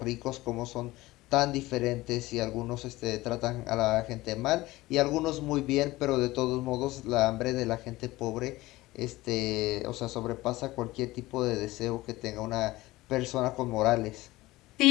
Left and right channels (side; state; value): right; quieter; 18.7 dB